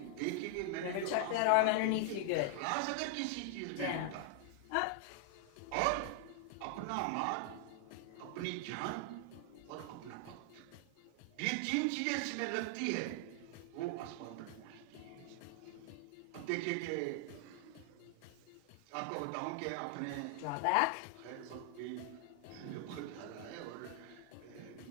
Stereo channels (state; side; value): different; both; correlation 0.00